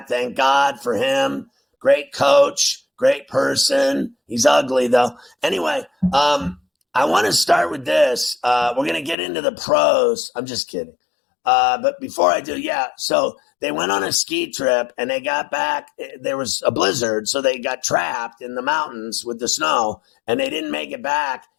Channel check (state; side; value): drops out; right; at 9.2 s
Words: Thank God for him. Great coach, great person. He's ugly though. Anyway, I want to start with this. We're going to get into the pros. I'm just kidding. But before I do, so they went on a ski trip and they got back. There was a blizzard, so they got trapped in the mountains with the snow, and they didn't make it back